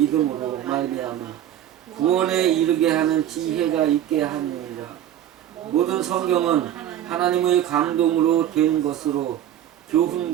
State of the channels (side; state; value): left; quieter; 11.3 dB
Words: 말미암아 구원에 이르게 하는 지혜가 있게 하느니라. 모든 성경은 하나님의 감동으로 된 것으로